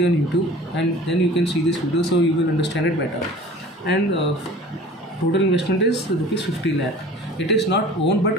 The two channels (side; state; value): both; normal; correlation 0.43